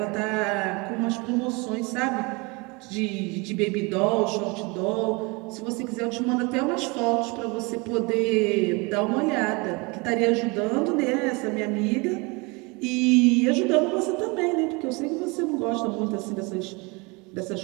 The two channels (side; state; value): left; quieter; 27.8 dB